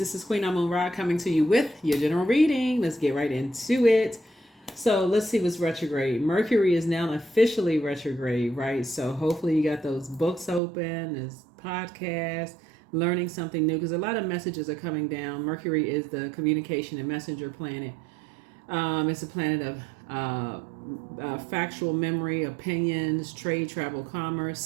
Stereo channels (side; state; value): left; drops out; at 10.6 s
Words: is Queen Amun Ra coming to you with your general reading. Let's get right into it. So let's see what's retrograde. Mercury is now officially retrograde, right? So hopefully you got those books open, this podcast, learning something new because a lot of messages are coming down. Mercury is the communication and messenger planet. It's a planet of factual memory, opinions, trade, travel, commerce,